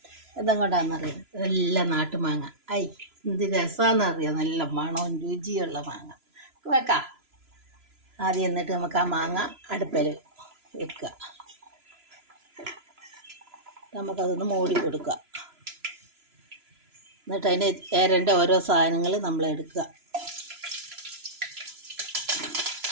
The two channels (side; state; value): left; late; 3.0 ms